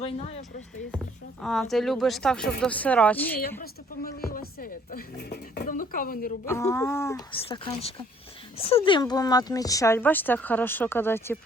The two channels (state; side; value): normal; both; correlation 0.60